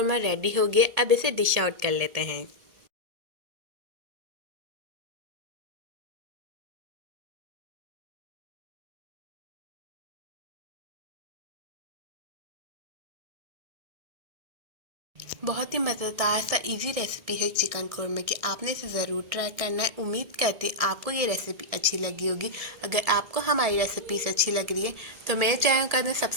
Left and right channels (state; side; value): late; left; 1.7 ms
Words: रेडी हो गया। अब इसे डिश आउट कर लेते हैं। बहुत ही मज़ेदार सा इजी रेसिपी है चिकन कोरमा की। आपने इसे ज़रूर ट्राई करना है। उम्मीद करती हूँ आपको ये रेसिपी अच्छी लगी होगी। अगर आपको हमारी रेसिपीज अच्छी लग रही है तो मेरे चैनल कर दें